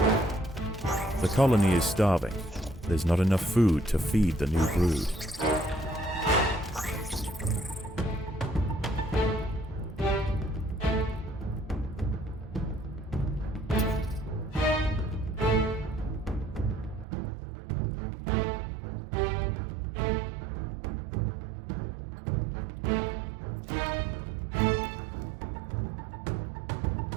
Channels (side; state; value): left; drops out; at 17.1 s